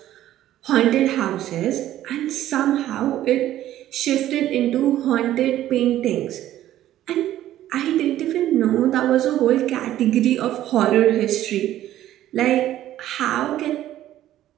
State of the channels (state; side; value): quieter; left; 13.1 dB